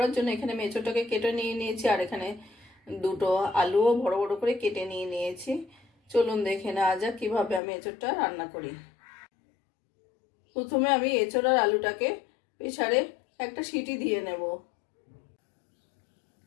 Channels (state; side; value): drops out; right; at 7.6 s